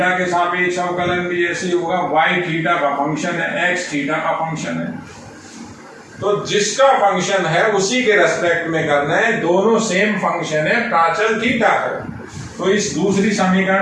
के सापेक्ष अवकलन भी ऐसे होगा, y थीटा का फंक्शन है, x थीटा का फंक्शन है, तो जिसका फंक्शन है उसी के रेस्पेक्ट में करना है, दोनों सेम फंक्शन है, प्राचल थीटा है। तो इस दूसरी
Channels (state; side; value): identical; both; correlation 1.00